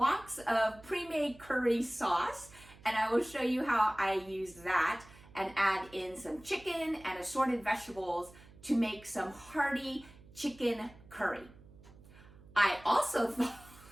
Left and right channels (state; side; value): noise; right; hum, 22 dB below the sound